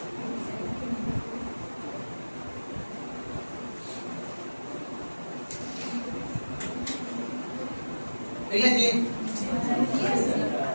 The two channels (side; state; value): both; inverted; correlation -1.00